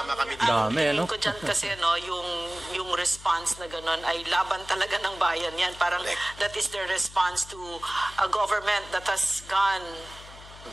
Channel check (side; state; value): left; noise; hum, 18 dB below the sound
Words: kami dito. Dami, no? Ko dyan kasi yung response na gano'n ay laban talaga ng bayan yan. Parang that is the response to a government that has gone